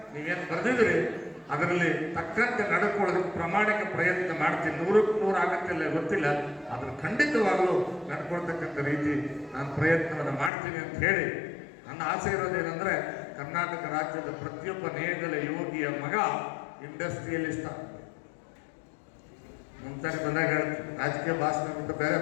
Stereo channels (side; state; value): right; drops out; at 10.5 s